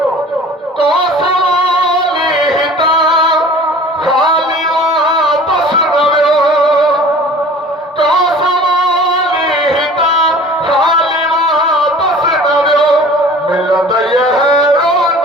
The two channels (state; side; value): normal; both; correlation 0.45